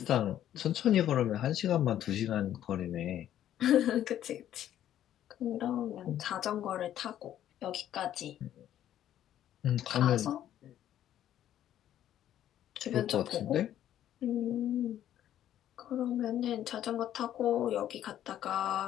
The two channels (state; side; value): quieter; right; 11.5 dB